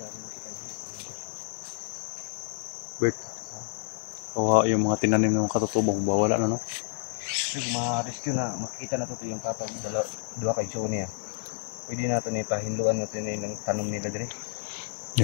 Bert, kawawa yung mga tinanim ng mga katutubo, wala na no. Ma-rescue na, makikita na ito yung tatawag dua kay Joe niya. Pwede natin ipahinluan natin yung tanong nila diri.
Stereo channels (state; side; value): silent; right; digital silence